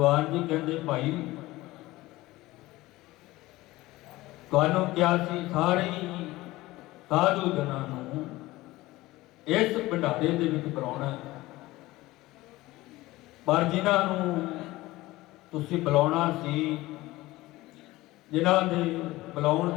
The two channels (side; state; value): right; quieter; 18.6 dB